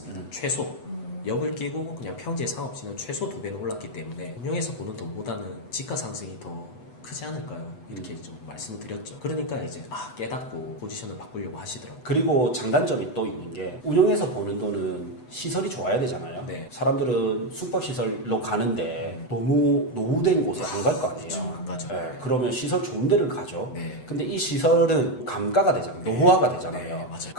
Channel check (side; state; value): right; late; 8.0 ms